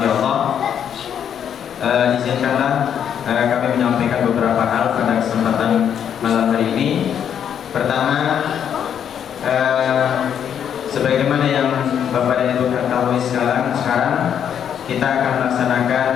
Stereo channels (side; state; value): right; quieter; 8.7 dB